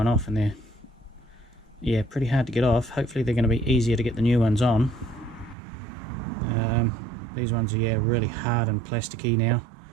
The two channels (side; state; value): left; drops out; at 5.6 s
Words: off and they're pretty hard to get off. Hopefully they're going to be easier to get the new ones on. These ones are really hard and plasticky now.